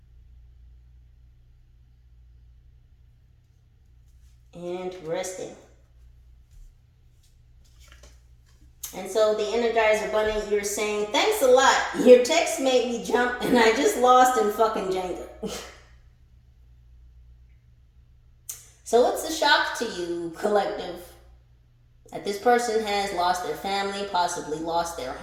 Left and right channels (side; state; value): both; identical; correlation 1.00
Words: Interesting. And so the Energizer Bunny, you're saying, thanks a lot. Your text made me jump and I just lost in fucking Jenga. So it's a shock to you, collective, that this person has lost their family, possibly lost their